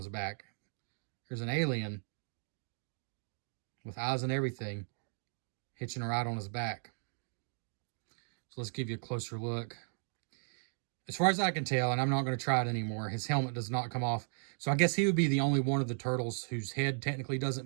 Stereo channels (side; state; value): left; silent; digital silence